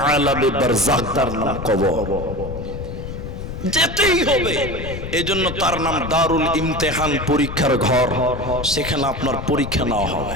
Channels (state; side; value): noise; left; rumble, 7 dB below the sound